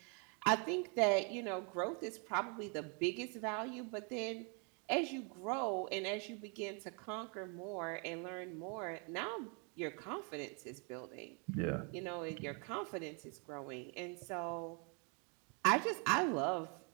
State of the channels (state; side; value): quieter; left; 36.3 dB